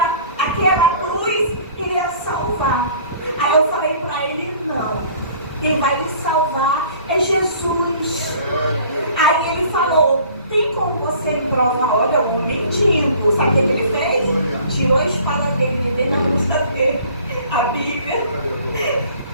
cruz iria salvar. Aí eu falei para ele, não. Quem vai lhe salvar é Jesus. povo você me provar, olha, eu vou mentindo. Sabe o que ele fez? Tirou a espada dele, dele na bolsa dele, a Bíblia.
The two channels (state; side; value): inverted; both; correlation -0.51